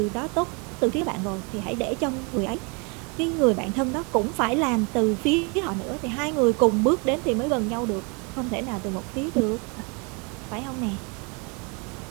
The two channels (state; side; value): quieter; left; 32.6 dB